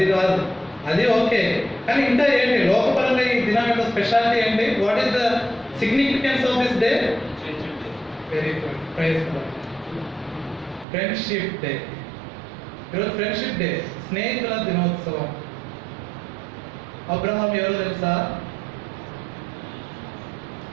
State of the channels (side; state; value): left; drops out; at 10.9 s